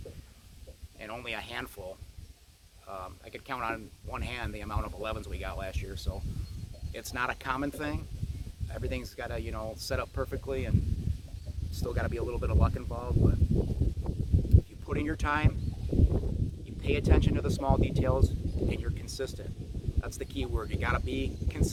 and only a handful. I could count on one hand the amount of 11s we got last year, so it's not a common thing. Everything's got to, you know, set up perfectly, and still got to be a little bit of luck involved. But if you put in your time, you pay attention to the small details, and you're consistent. That's the key word. You got to be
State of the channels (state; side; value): identical; both; correlation 1.00